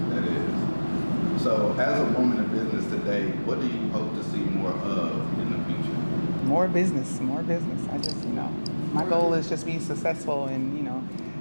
That is. So as a woman in business today, what do you hope to see more of in the future? More business. I just, my goal is just be successful and,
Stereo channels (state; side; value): inverted; both; correlation -1.00